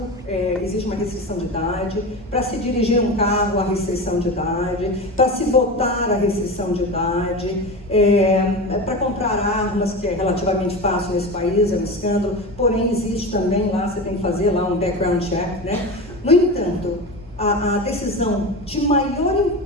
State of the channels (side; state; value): both; normal; correlation 0.26